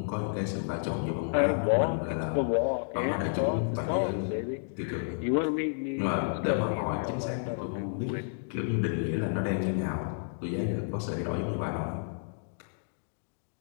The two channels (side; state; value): right; silent; digital silence